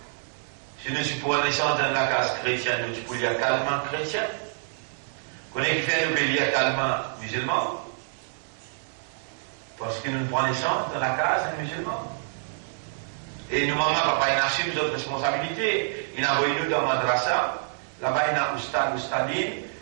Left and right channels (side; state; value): left; silent; digital silence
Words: Si nous prenons les chances dans la case chrétien, nous sommes pour les calmement chrétien. Connaissez qui fait nous payer calmement musulman? Parce que nous prenons les chances dans la case musulman. Et nous, maman, papa, il a assume notre responsabilité. Il a envoyé nous dans madrasa. Là-bas, il a Oustad, Oustadine.